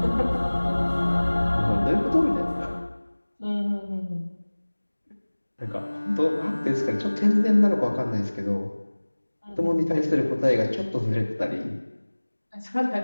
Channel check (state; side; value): inverted; both; correlation -1.00